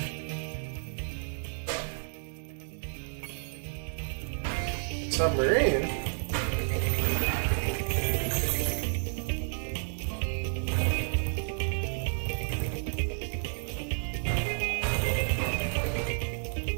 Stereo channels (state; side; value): silent; left; digital silence